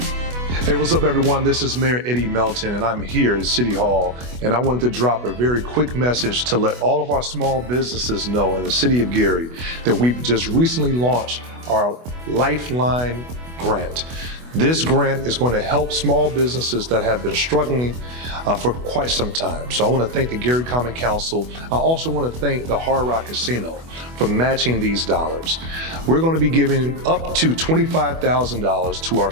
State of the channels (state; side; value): late; left; 24 ms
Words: Hey, what's up, everyone? This is Mayor Eddie Melton, and I'm here at City Hall, and I wanted to drop a very quick message to let all of our small businesses know in the city of Gary that we've just recently launched our Lifeline grant. This grant is going to help small businesses that have been struggling for quite some time. So I want to thank the Gary Common Council. I also want to thank the Hard Rock Casino for matching these dollars. We're going to be giving up to $25,000 to our